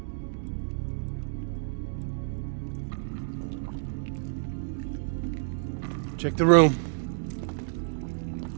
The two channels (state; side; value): silent; left; digital silence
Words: Check the room.